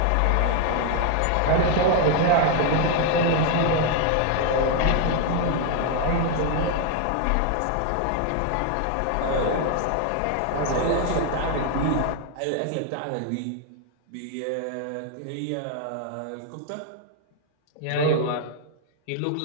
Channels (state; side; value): different; both; correlation 0.01